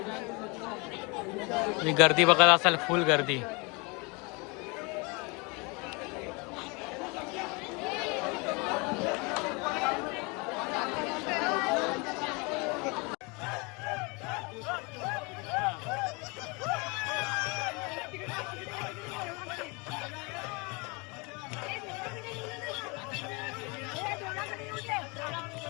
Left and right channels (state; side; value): quieter; right; 29.2 dB